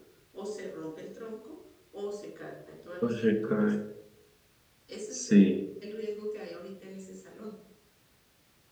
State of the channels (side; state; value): both; identical; correlation 1.00